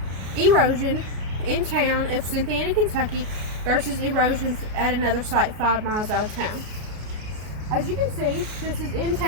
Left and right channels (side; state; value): left; late; 33 ms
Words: erosion in town of Cynthiana, Kentucky versus erosion at another site 5 miles out of town. As you can see, this is in